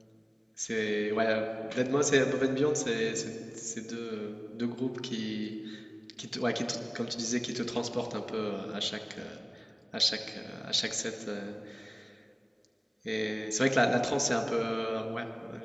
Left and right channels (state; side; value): identical; both; correlation 1.00